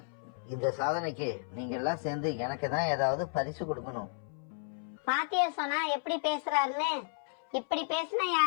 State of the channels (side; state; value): right; silent; 56 dB below the other